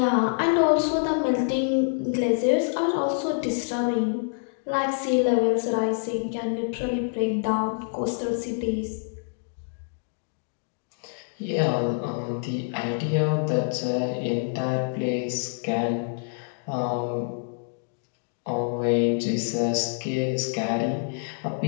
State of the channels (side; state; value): right; silent; digital silence